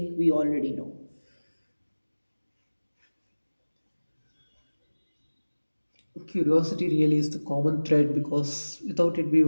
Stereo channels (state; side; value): inverted; both; correlation -1.00